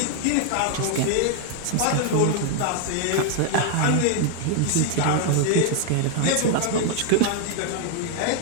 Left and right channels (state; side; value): different; both; correlation 0.00